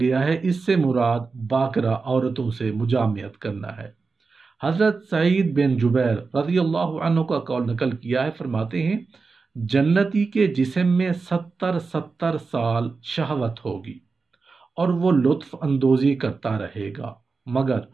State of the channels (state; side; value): quieter; left; 4.4 dB